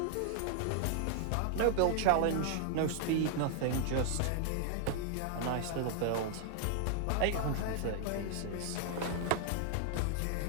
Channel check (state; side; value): different; both; correlation 0.00